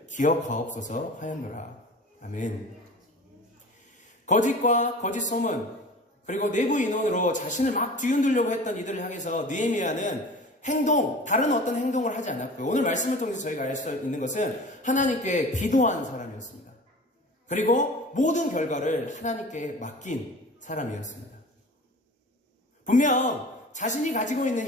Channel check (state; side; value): normal; both; correlation 0.39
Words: 기억하옵소서 하였노라. 아멘. 거짓과 거짓 소문, 그리고 내부 인원으로 자신을 막 뒤흔들려고 했던 이들을 향해서 느헤미야는 다른 어떤 행동을 하지 않았고요. 오늘 말씀을 통해서 저희가 알 수 있는 것은 하나님께 기도한 사람이었습니다. 그리고 모든 결과를 하나님께 맡긴 사람이었습니다. 분명 자신이 가지고